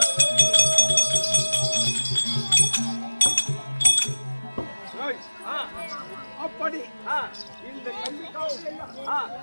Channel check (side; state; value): both; inverted; correlation -1.00